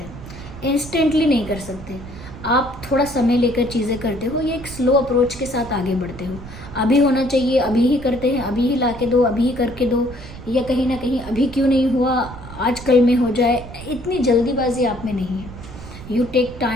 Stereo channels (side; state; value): right; noise; rumble, 14 dB below the sound